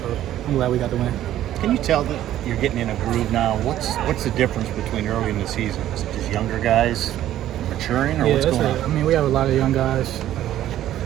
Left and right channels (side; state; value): left; quieter; 12.6 dB